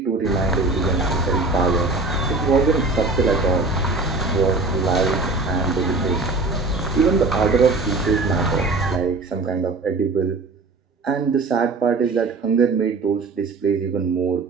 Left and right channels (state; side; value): quieter; left; 3.5 dB